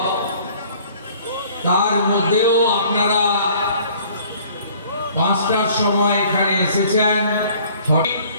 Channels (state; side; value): inverted; both; correlation -0.54